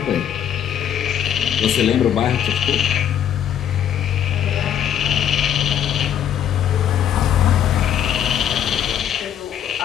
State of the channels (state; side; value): quieter; right; 9.6 dB